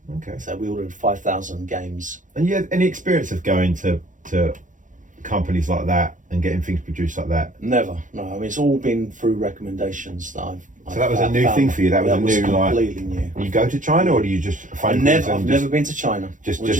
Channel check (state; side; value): late; left; 0.37 ms